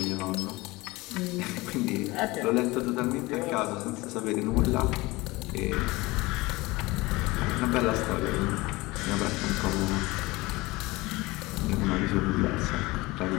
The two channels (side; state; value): right; quieter; 21.8 dB